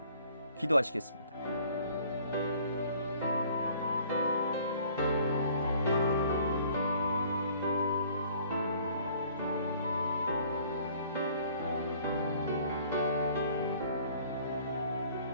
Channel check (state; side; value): inverted; both; correlation -0.56